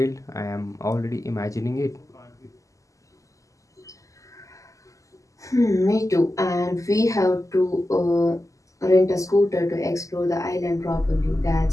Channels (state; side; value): late; right; 0.16 ms